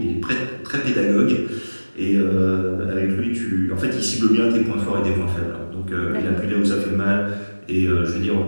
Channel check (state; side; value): inverted; both; correlation -1.00